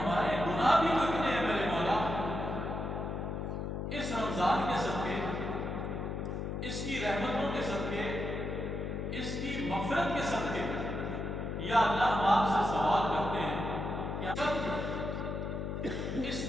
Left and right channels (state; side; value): noise; left; hum, 3 dB below the sound